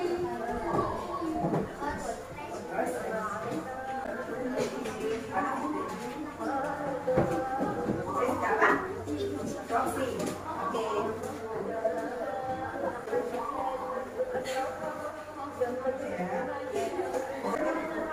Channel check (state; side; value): identical; both; correlation 1.00